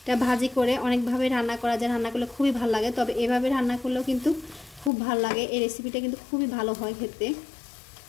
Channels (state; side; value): drops out; right; at 4.9 s